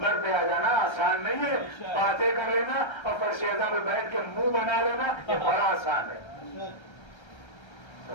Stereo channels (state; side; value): late; right; 1.3 ms